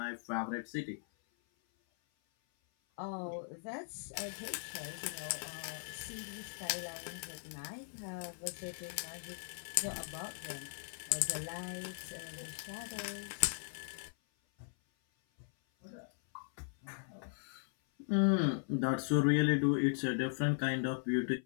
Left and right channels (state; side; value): silent; right; 52 dB below the other